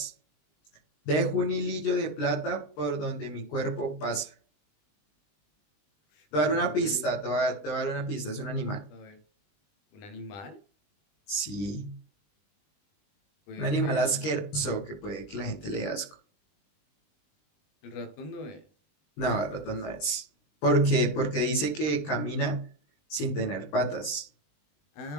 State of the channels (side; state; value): right; late; 20 ms